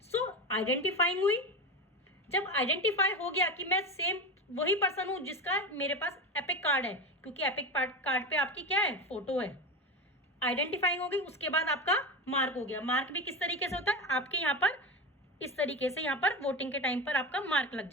सो आइडेंटिफाइंग हुई। जब आइडेंटिफाई हो गया कि मैं सेम वही पर्सन हूं जिसका मेरे पास एपिक कार्ड है, क्योंकि एपिक कार्ड पे आपकी क्या है? फोटो है। आइडेंटिफाइंग हो गई, उसके बाद आपका मार्क हो गया। मार्क भी किस तरीके से होता है? आपके यहाँ पर इस तरीके से यहाँ पर वोटिंग के टाइम पर आपका मार्क लग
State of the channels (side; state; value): both; normal; correlation 0.22